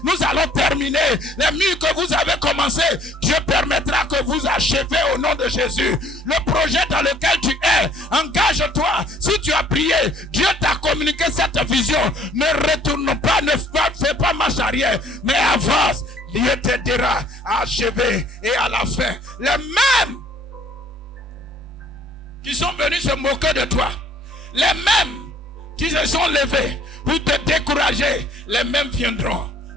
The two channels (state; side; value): normal; both; correlation 0.58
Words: nous allons terminer. Les murs que vous avez commencé, Dieu permettra que vous achevez au nom de Jésus. Le projet dans lequel tu es, engage-toi. Si tu as prié, Dieu t'a communiqué cette vision. Ne retourne pas, ne fais pas marche arrière, mais avance. Dieu t'aidera à achever et à la fin. Les mêmes qui sont venus se moquer de toi, les mêmes qui se sont levés pour te décourager, les mêmes viendront